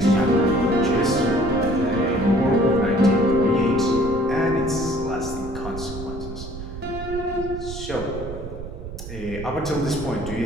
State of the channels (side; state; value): right; noise; rumble, 10 dB below the sound